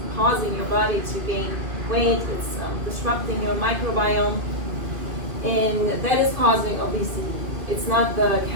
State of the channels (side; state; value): left; late; 2.5 ms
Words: causing your body to gain weight. It's disrupting your microbiome, and that is causing obesity. It's not the